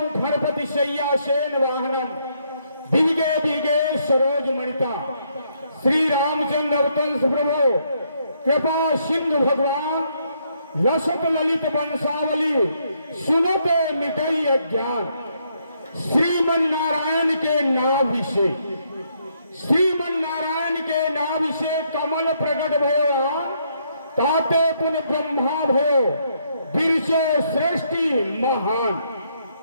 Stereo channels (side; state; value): both; inverted; correlation -0.73